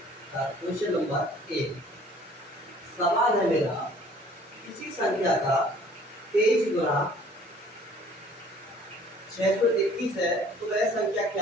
का क्वेश्चन नंबर 1। सवाल है मेरा, किसी संख्या का 23 गुना 621 है तो वह संख्या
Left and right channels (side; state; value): both; normal; correlation 0.54